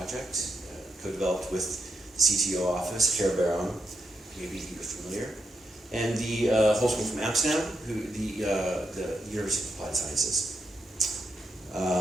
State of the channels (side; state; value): both; normal; correlation 0.81